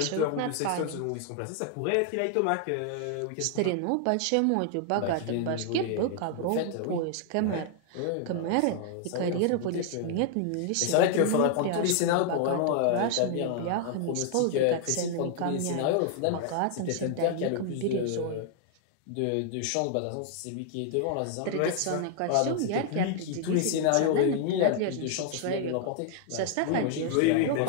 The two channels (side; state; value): both; different; correlation 0.00